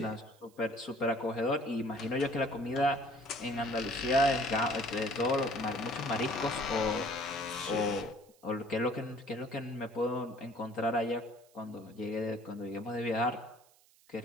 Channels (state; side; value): noise; right; hiss, 29 dB below the sound